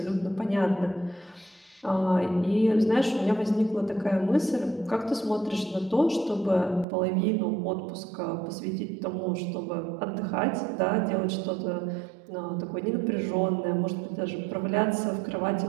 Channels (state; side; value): drops out; left; at 6.9 s